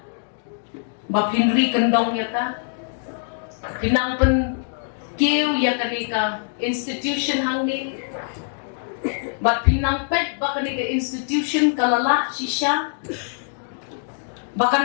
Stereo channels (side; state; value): right; silent; digital silence